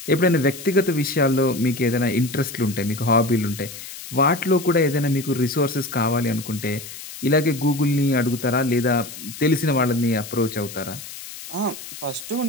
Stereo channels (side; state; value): left; noise; hiss, 13 dB below the sound